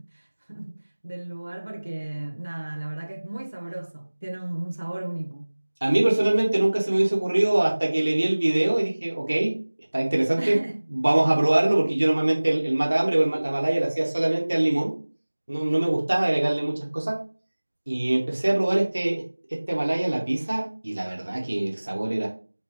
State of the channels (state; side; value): inverted; both; correlation -1.00